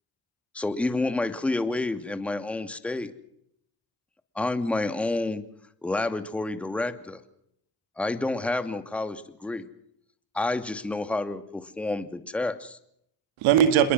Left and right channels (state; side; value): normal; both; correlation 0.48